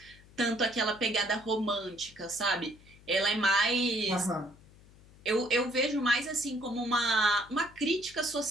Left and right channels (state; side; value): noise; left; hum, 24 dB below the sound